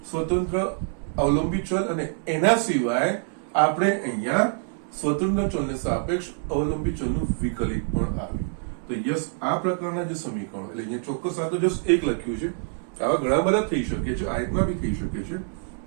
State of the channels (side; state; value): left; silent; 61 dB below the other